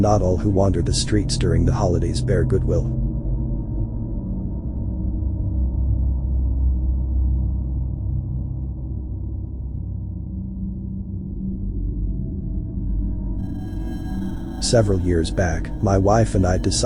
all who wander the streets during the holidays bear goodwill. Several years back, my wife and I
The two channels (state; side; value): identical; both; correlation 1.00